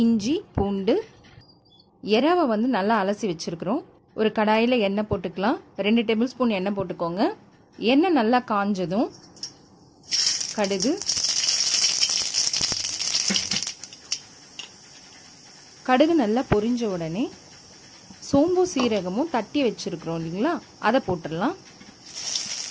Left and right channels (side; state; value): both; identical; correlation 1.00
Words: இஞ்சி, பூண்டு, எறாவை வந்து நல்லா அலசி வச்சுருக்குறோம். ஒரு கடாயில் எண்ணெய் போட்டுக்கலாம். 2 டேபிள் ஸ்பூன் எண்ணெய் போட்டுக்கோங்க. எண்ணெய் நல்லா காஞ்சதும் கடுகு நல்லா பொரிஞ்ச உடனே சோம்பு சீரகமும் தட்டி வச்சுருக்குறோம் இல்லைங்களா, அதை போட்டுடலாம்.